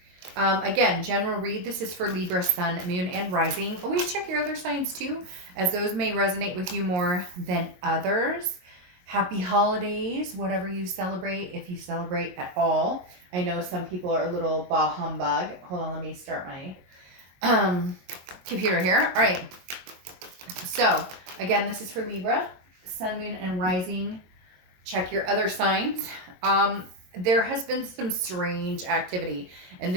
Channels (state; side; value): late; left; 22 ms